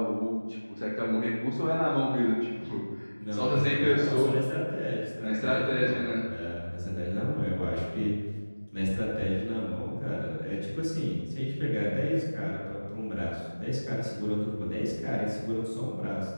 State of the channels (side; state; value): both; inverted; correlation -1.00